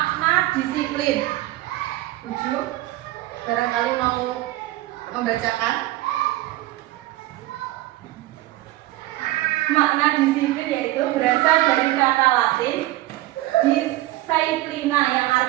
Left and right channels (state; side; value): quieter; left; 17.0 dB